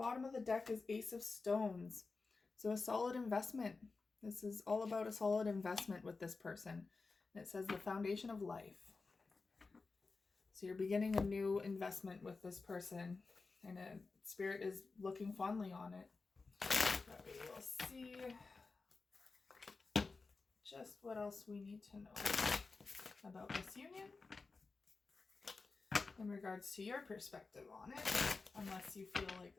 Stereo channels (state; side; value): quieter; right; 4.1 dB